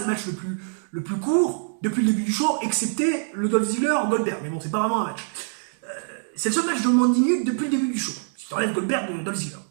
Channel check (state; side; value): silent; left; digital silence